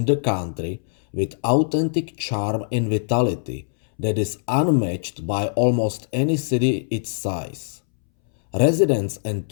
the country with authentic charm and vitality that is unmatched by almost any city its size. Residents and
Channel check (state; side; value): silent; right; 63 dB below the other